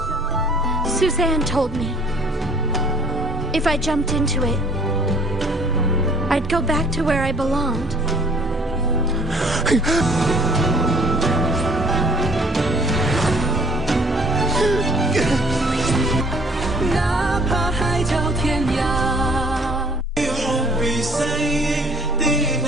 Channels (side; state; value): both; normal; correlation 0.55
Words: Suzanne told me if I jumped into it, I'd go back to where I belonged.